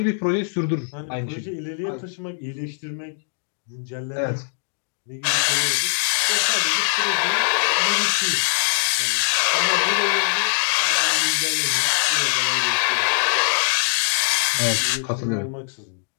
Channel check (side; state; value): right; silent; digital silence